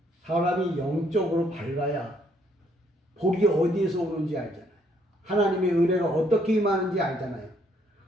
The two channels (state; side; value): normal; both; correlation 0.68